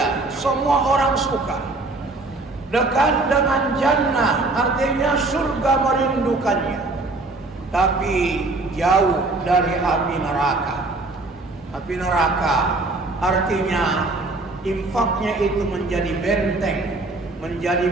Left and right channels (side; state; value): left; quieter; 3.2 dB